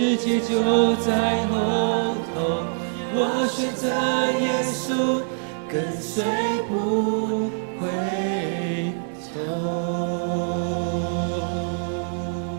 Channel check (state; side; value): silent; left; 59 dB below the other